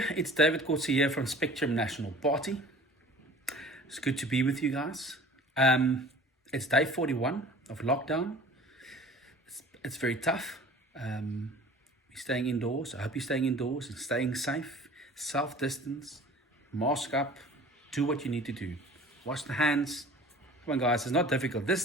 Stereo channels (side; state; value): both; normal; correlation 0.45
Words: It's David Coetzee here from Spectrum National Party. It's good to be with you guys. It's day 41 of lockdown. It's very tough. We're staying indoors. I hope you're staying indoors and staying safe. Self-distance, mask up, do what you need to do. Wash the hands. Come on, guys, it's not difficult.